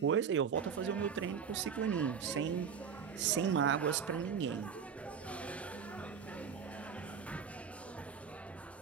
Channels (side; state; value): left; quieter; 6.8 dB